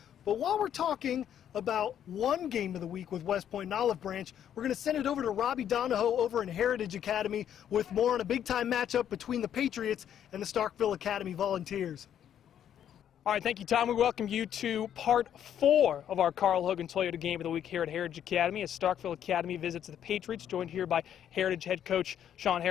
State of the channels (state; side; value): quieter; right; 9.8 dB